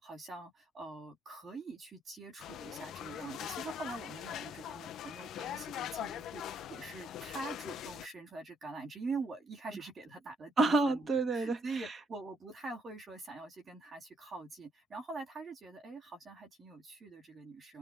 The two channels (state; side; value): normal; both; correlation 0.71